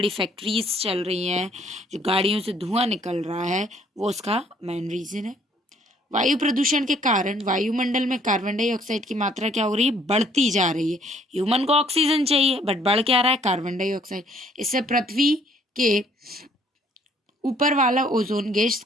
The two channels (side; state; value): both; normal; correlation 0.62